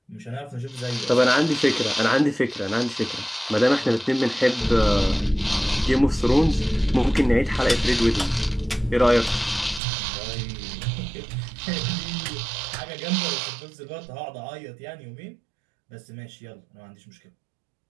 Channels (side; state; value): left; drops out; at 9.8 s